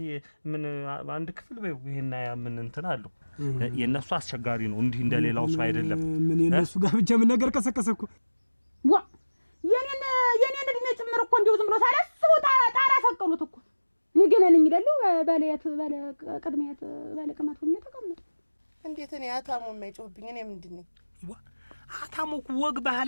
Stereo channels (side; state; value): both; inverted; correlation -1.00